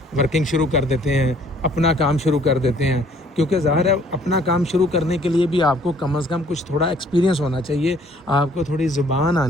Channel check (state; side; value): normal; both; correlation 0.59